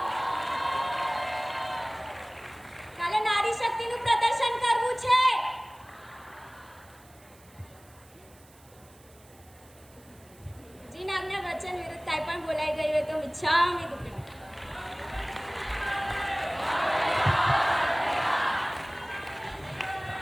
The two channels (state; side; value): noise; right; hiss, 27 dB below the sound